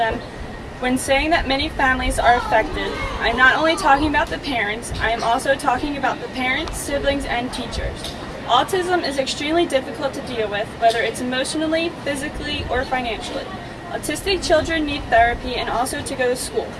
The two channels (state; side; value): identical; both; correlation 1.00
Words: When saying that many families are affected, I'm not only talking about the parents, I am also talking about the parents, siblings, and teachers. Autism is extremely difficult to deal with, whether it's emotionally, physically, or financially. Autistic children need therapy and also to go to school.